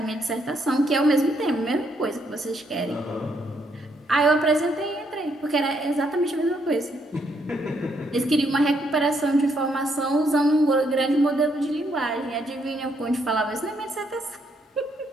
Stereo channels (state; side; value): normal; both; correlation 0.74